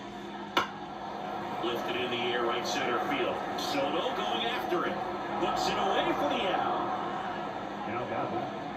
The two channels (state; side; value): identical; both; correlation 1.00